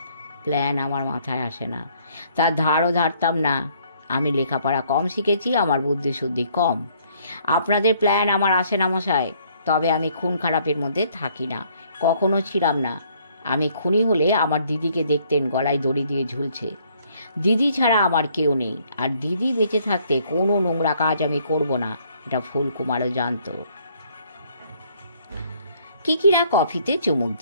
প্ল্যান আমার মাথায় আসে না, তার ধারও ধারতাম না। আমি লেখাপড়া কম শিখেছি, আমার বুদ্ধিশুদ্ধি কম। আপনাদের প্ল্যান আমার আসে না মশাই। তবে আমি খুন খারাপের মধ্যে থাকি না, কখনো ছিলাম না। আমি খুনি হলে আমার দিদিকে দেখতেন গলায় দড়ি দিয়ে ঝুলছে। দিদি ছাড়া আমার কেউ নেই, আর দিদি বেঁচে থাকতে কোনো নোংরা কাজ আমি করব না, এটা ফুলকুমারও জানত। কিকিরা কফিতে চুমুক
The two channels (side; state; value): both; inverted; correlation -0.64